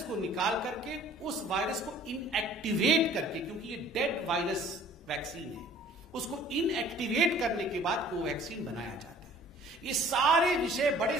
को निकाल करके उस वायरस को इनएक्टिवेट करके, क्योंकि ये डेड वायरस वैक्सीन है, उसको इनएक्टिवेट करने के बाद कोवैक्सीन बनाया जाता है। ये सारे विषय बड़े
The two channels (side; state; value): both; normal; correlation 0.52